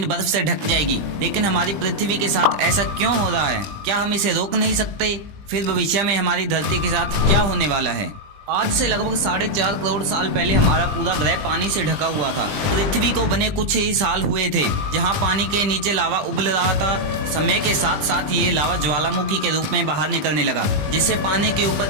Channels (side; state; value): left; late; 20 ms